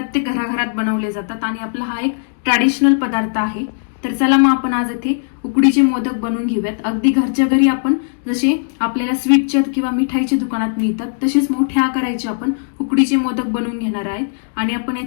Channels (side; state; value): right; silent; digital silence